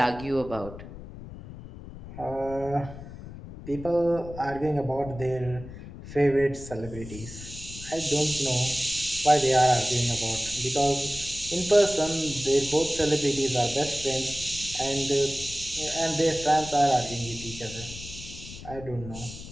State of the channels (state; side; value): noise; left; rumble, 14 dB below the sound